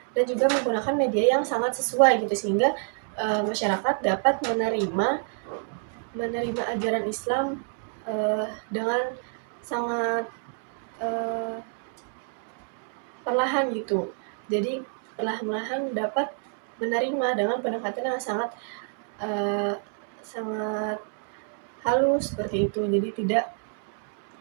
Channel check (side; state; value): left; silent; 56 dB below the other